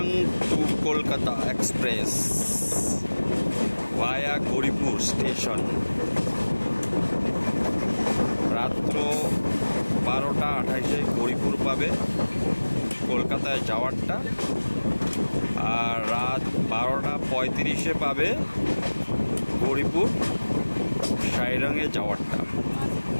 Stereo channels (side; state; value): both; inverted; correlation -1.00